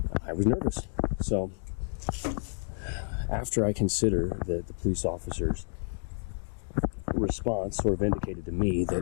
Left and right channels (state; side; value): silent; right; digital silence